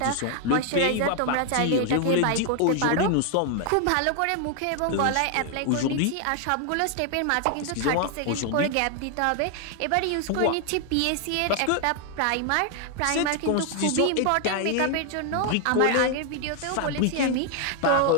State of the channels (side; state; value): both; different; correlation 0.00